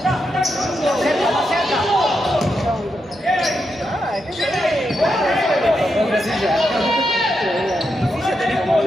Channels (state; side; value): normal; both; correlation 0.84